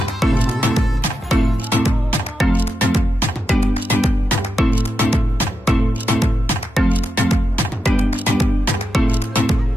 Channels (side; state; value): both; normal; correlation 0.87